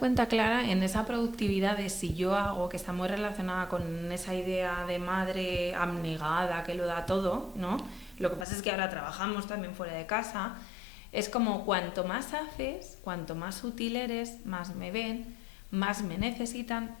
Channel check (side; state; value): right; drops out; at 8.5 s